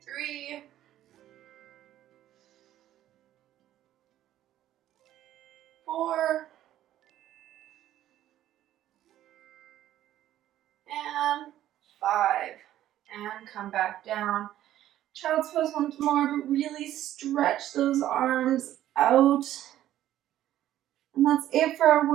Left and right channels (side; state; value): left; quieter; 12.8 dB